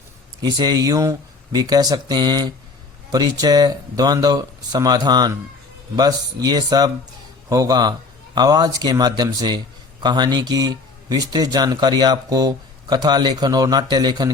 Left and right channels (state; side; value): quieter; right; 3.9 dB